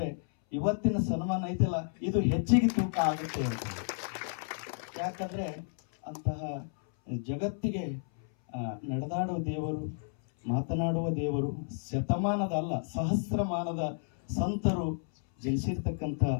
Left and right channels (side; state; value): right; silent; 57 dB below the other